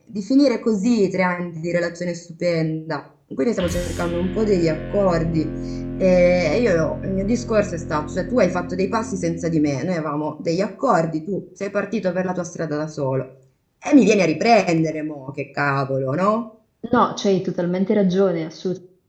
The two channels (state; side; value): identical; both; correlation 1.00